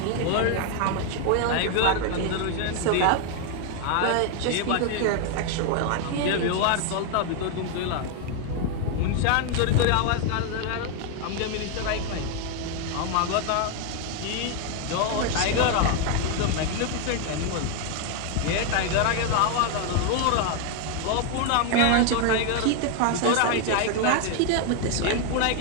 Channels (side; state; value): both; different; correlation 0.01